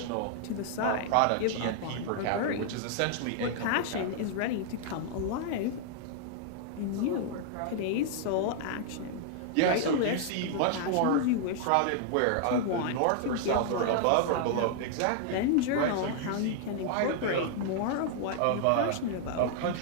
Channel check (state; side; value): different; both; correlation -0.01